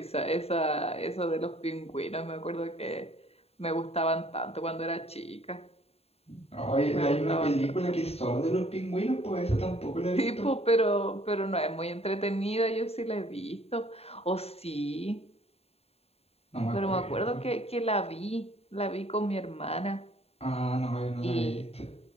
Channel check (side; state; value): right; late; 0.29 ms